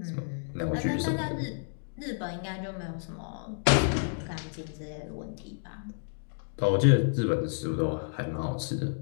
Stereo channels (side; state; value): right; silent; digital silence